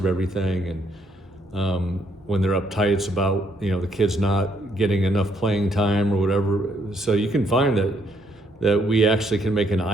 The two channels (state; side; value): normal; both; correlation 0.71